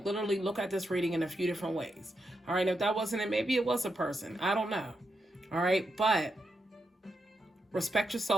look at this reading in a few different ways. All right. If that wasn't it, maybe it was a person. I don't know. All right. But respect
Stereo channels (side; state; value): both; normal; correlation 0.84